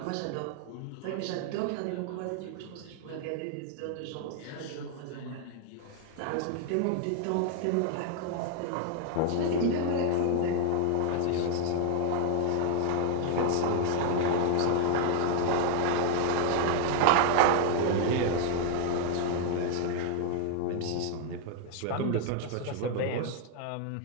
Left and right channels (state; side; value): different; both; correlation 0.00